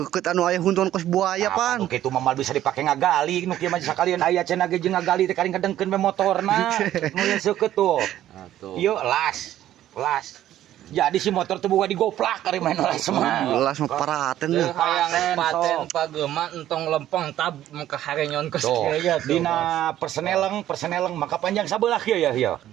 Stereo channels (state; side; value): quieter; left; 12.6 dB